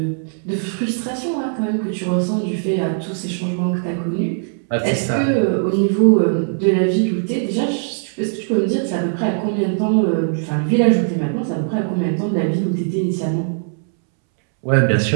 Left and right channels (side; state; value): left; silent; 66 dB below the other